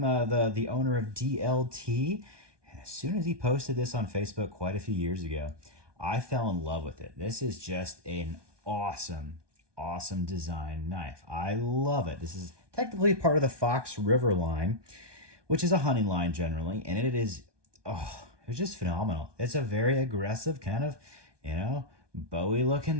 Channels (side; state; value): left; late; 1.2 ms